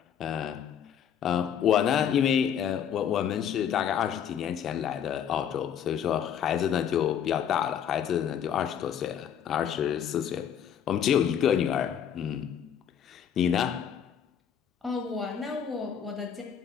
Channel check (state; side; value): quieter; right; 8.8 dB